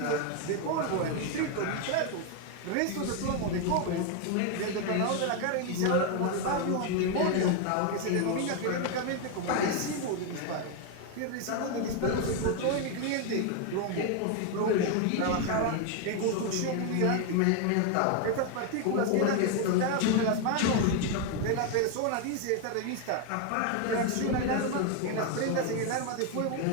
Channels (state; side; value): different; both; correlation 0.01